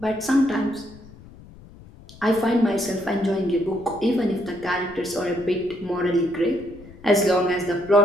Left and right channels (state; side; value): noise; left; rumble, 20 dB below the sound